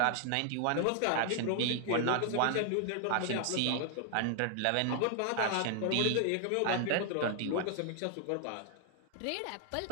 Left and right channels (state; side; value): different; both; correlation 0.00